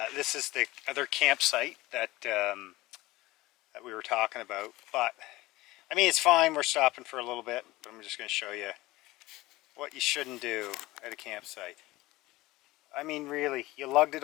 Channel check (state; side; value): quieter; right; 19.1 dB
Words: This is the other campsite that that we were talking about, but I mean, it's fine, we're stopping for a little bit, but I'm just going to show you what you shouldn't do at a campsite. I mean, really, you lugged it